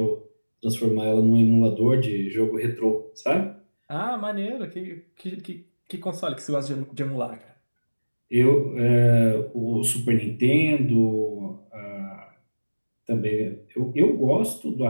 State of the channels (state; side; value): inverted; both; correlation -1.00